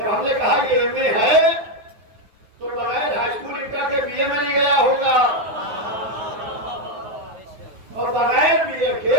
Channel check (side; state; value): left; late; 9.8 ms